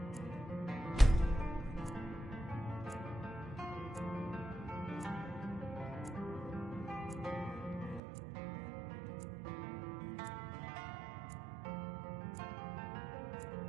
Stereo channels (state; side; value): drops out; left; at 8.0 s